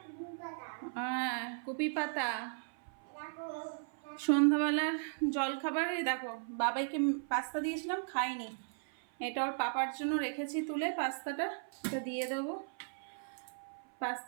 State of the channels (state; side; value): silent; left; 53 dB below the other